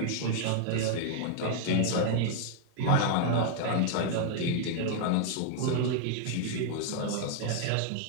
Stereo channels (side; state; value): both; different; correlation 0.00